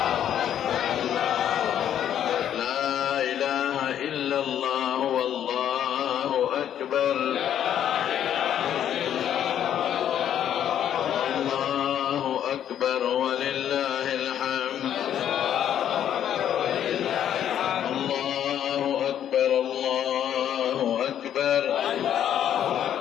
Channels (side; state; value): right; quieter; 10.1 dB